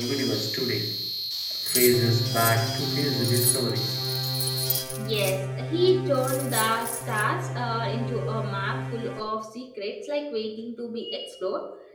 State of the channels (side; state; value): both; identical; correlation 1.00